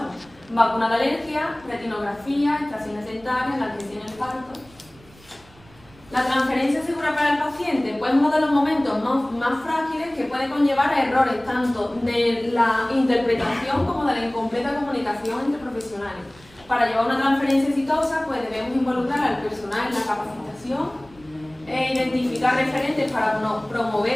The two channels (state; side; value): noise; right; rumble, 26 dB below the sound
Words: Vacuna de alergia, retinografía, extracciones dentarias, la atención en el parto. La transferencia segura para el paciente, pues uno de los momentos más frágiles que puede conllevar a errores tanto de la interpretación como de la incompleta comunicación entre profesionales. Para llevar una transferencia exitosa, pues debemos involucrar al personal en la capacitación, identificar referentes para